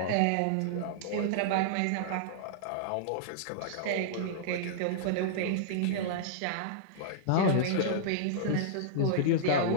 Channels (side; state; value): both; different; correlation -0.02